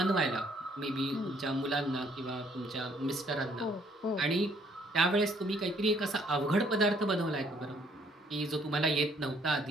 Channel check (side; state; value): both; normal; correlation 0.64